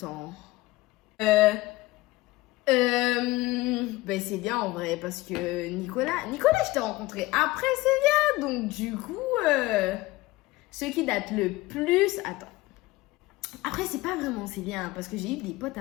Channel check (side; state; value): right; quieter; 19.5 dB